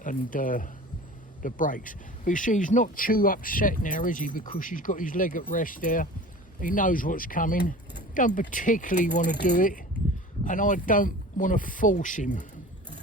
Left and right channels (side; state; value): both; normal; correlation 0.39